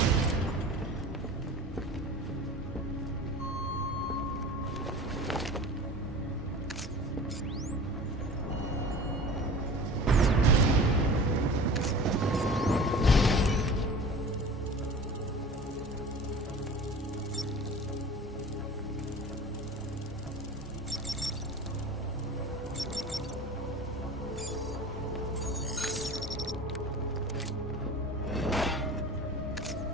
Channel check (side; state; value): both; normal; correlation 0.38